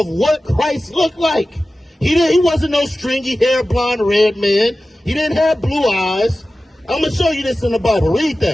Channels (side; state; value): both; normal; correlation 0.95